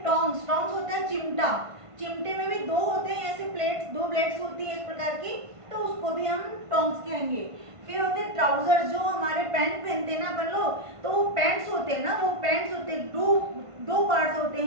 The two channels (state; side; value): late; left; 1.5 ms